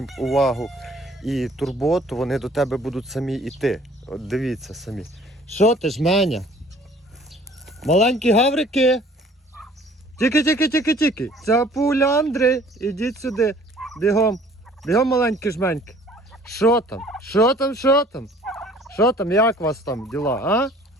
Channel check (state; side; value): normal; both; correlation 0.53